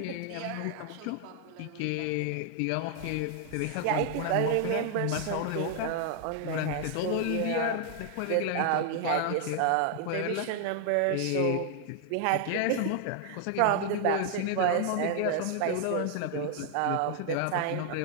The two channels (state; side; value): different; both; correlation 0.00